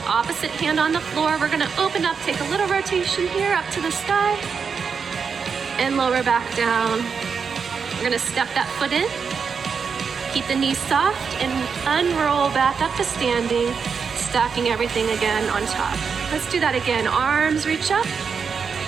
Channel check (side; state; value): left; quieter; 6.0 dB